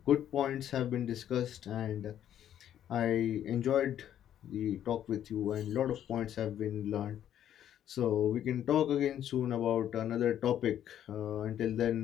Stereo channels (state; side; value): quieter; right; 10.6 dB